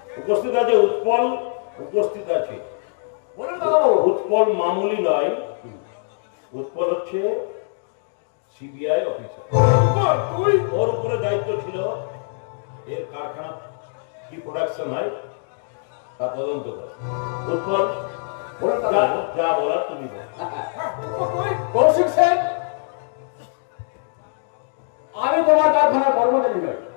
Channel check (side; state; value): right; silent; digital silence